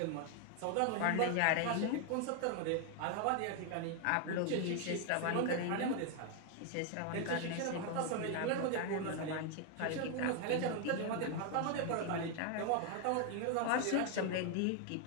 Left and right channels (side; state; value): both; different; correlation 0.01